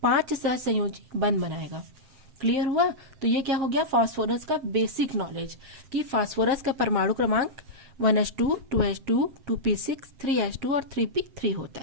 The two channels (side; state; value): left; late; 7.7 ms